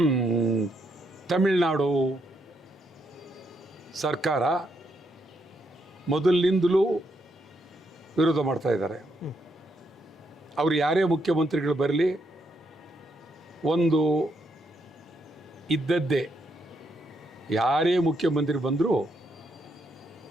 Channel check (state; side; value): normal; both; correlation 0.77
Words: ತಮಿಳುನಾಡು ಸರ್ಕಾರ ಮೊದಲಿನಿಂದಲೂ ವಿರೋಧ ಮಾಡ್ತಾ ಇದ್ದಾರೆ. ಅವರು ಯಾರೇ ಮುಖ್ಯಮಂತ್ರಿಗಳು ಬರಲಿ, ಒಂದು ಇದ್ದದ್ದೇ, ಯಾರೇ ಮುಖ್ಯಮಂತ್ರಿ ಬಂದರೂ